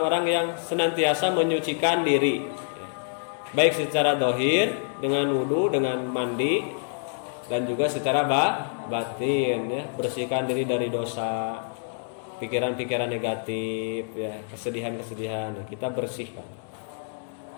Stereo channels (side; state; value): right; silent; 60 dB below the other